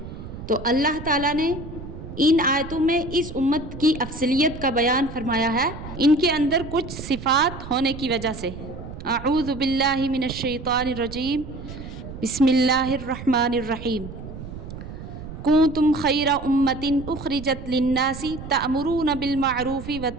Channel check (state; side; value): noise; right; rumble, 11 dB below the sound